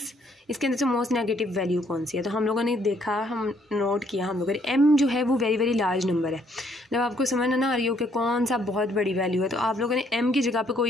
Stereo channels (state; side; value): normal; both; correlation 0.68